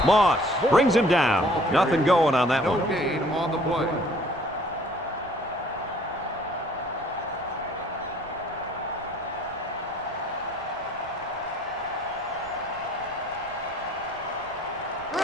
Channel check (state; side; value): noise; right; rumble, 21 dB below the sound